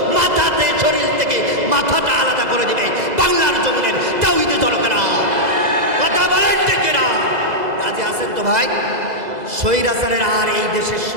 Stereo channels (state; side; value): late; left; 2.0 ms